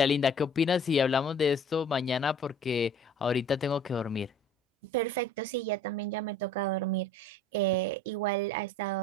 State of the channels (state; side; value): normal; both; correlation 0.49